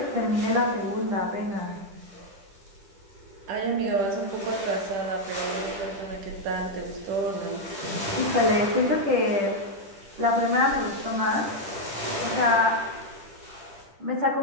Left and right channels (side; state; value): left; late; 10 ms